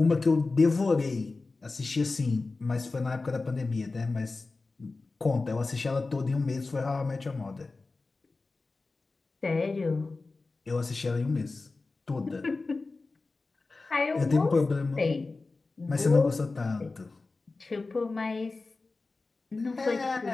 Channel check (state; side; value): quieter; right; 3.7 dB